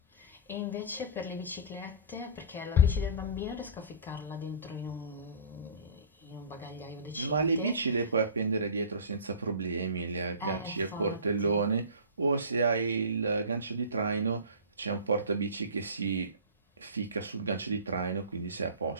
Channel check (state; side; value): inverted; both; correlation -0.37